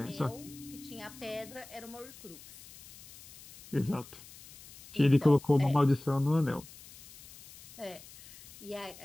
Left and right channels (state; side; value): noise; left; hiss, 19 dB below the sound